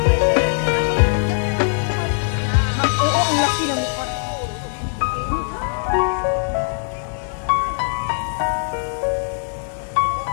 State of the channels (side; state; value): right; silent; digital silence